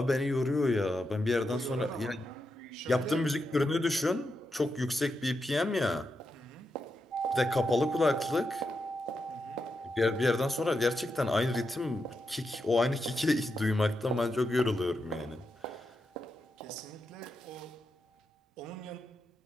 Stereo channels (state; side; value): normal; both; correlation 0.86